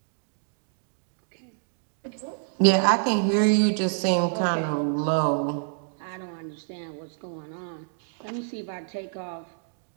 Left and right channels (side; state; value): left; silent; digital silence